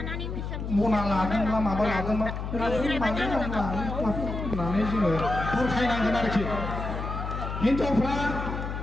मना लादोंब्ला माबा लादोंब्ला होननानै जोङो बुरखायनांगोन आरोखि हिनजावफ्रा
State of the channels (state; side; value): noise; left; hum, 5 dB below the sound